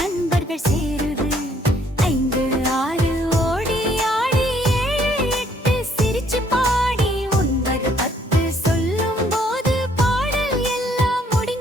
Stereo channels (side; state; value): both; normal; correlation 0.65